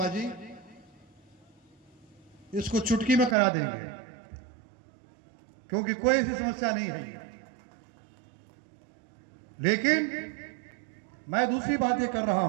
जी इसको चुटकी में करा देंगे, क्योंकि कोई ऐसी समस्या नहीं है। लेकिन मैं दूसरी बात ये कर रहा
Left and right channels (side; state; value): left; drops out; at 3.4 s